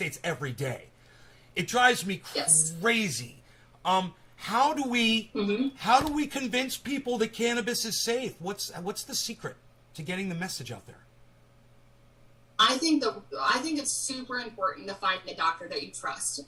every day. It drives me crazy. How do we convince people that cannabis is safe? What's the secret to getting the message out there? I think it's super important to find a doctor that you trust.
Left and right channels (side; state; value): both; identical; correlation 1.00